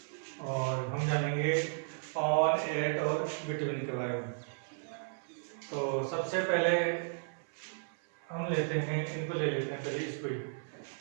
और हम जानेंगे ऑन, एट और बिटवीन के बारे में। तो सबसे पहले हम लेते हैं, इनको ले लेते हैं पहले इसको ही,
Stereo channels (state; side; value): silent; left; 55 dB below the other